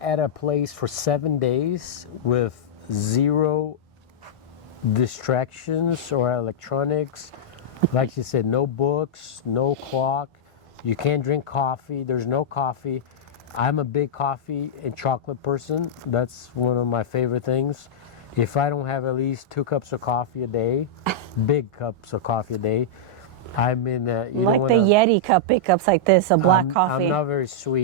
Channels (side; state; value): both; normal; correlation -0.08